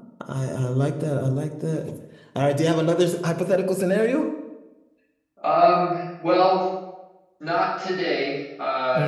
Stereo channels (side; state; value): both; identical; correlation 1.00